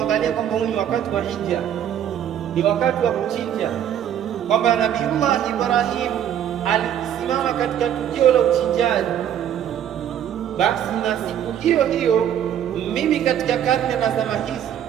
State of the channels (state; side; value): quieter; left; 9.9 dB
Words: kwamba huu ni wakati wa hija, ni wakati wa kuchinja, kwamba Nabiullah Ibrahim alisimama katika tukio la uchinjaji. Basi na siku hiyo hiyo mimi katika karne na zama hizi